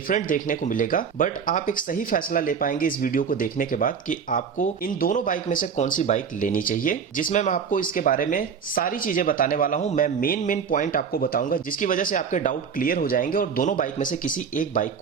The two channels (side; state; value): left; quieter; 6.6 dB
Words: देखने को मिलेगा, बट आप एक सही फैसला ले पाएंगे इस वीडियो को देखने के बाद कि आपको इन दोनों बाइक में से कौन सी बाइक लेनी चाहिए, जिसमें मैं आपको इसके बारे में सारी चीजें बताने वाला हूं। मैं मेन पॉइंट आपको बताऊंगा जिसकी वजह से आपके डाउट क्लियर हो जाएंगे और दोनों बाइक में से किसी एक बाइक